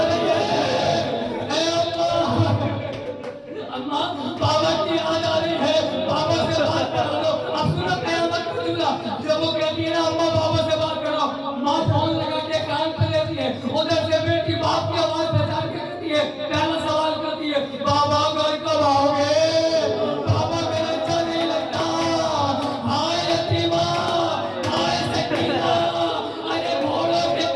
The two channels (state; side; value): identical; both; correlation 1.00